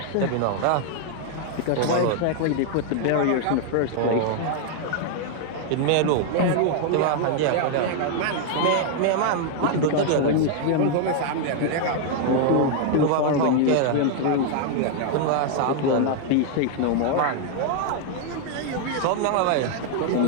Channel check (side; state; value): both; different; correlation 0.00